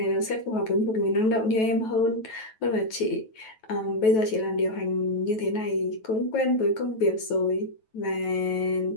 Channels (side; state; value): right; late; 9.2 ms